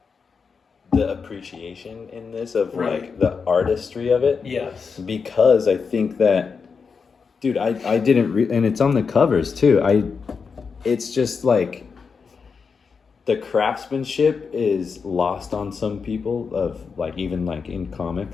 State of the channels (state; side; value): quieter; right; 5.5 dB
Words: the appreciation in this of like the artistry of it. Yes. Because I think that, dude, I didn't and it's on the covers too. It's just like the craftsmanship is lost on some people of like, even like in